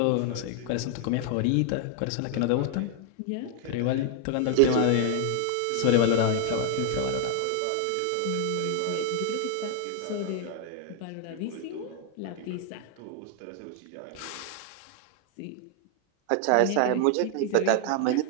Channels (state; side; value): different; both; correlation 0.00